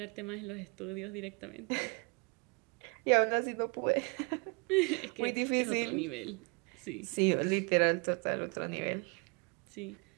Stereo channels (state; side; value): quieter; left; 32.3 dB